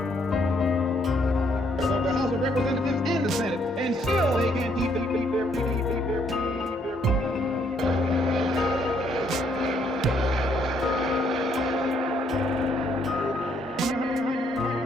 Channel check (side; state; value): both; normal; correlation 0.70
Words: The House of Representatives and the Senate, and still they can't keep their